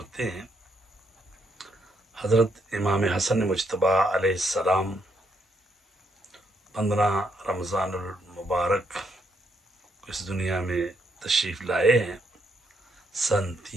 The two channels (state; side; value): normal; both; correlation 0.75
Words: ہیں۔ حضرت امام حسن مجتبیٰ علیہ السلام 15 رمضان المبارک اس دنیا میں تشریف لائے ہیں، سن